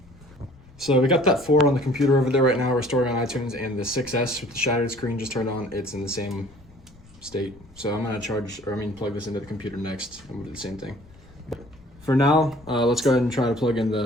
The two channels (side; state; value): left; noise; rumble, 25 dB below the sound